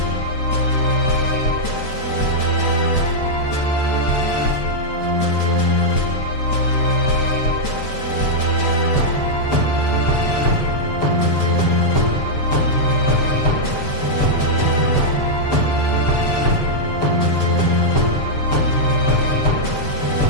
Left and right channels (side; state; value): right; late; 6.9 ms